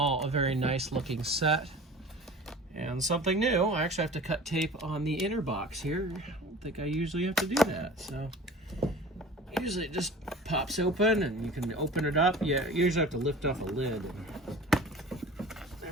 a very nice looking set. And something new, I actually have to cut tape on the inner box here. I don't think I usually have to do that. So usually it just pops open and you can open it up. Yeah, you usually have to lift off a lid. There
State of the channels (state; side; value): normal; both; correlation 0.40